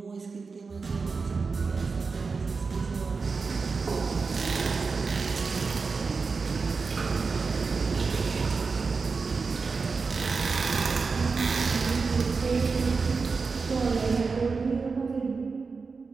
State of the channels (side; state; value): left; quieter; 4.7 dB